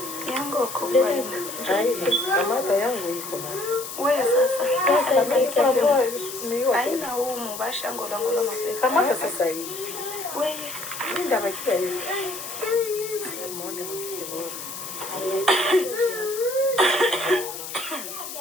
yangu kubwa ina kamata yangu iko na wewe sasa niyo haina huu mbasha ngolongola mapepe kamata sasa hivi wewe ndio makia hivi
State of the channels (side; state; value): left; noise; hiss, 9 dB below the sound